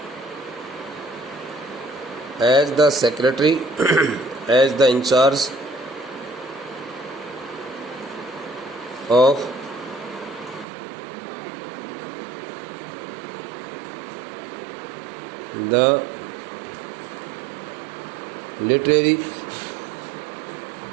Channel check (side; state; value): left; drops out; at 10.7 s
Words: As the secretary, as the in charge of the literary